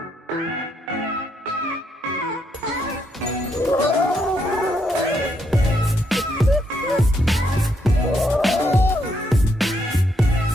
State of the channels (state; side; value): normal; both; correlation 0.76